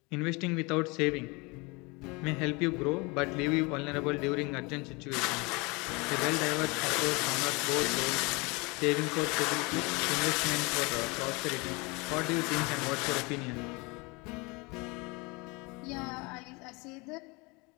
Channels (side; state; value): right; quieter; 27.3 dB